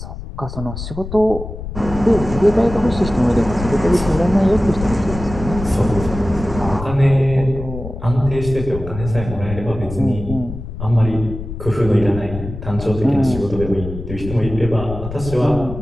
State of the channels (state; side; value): noise; left; rumble, 9 dB below the sound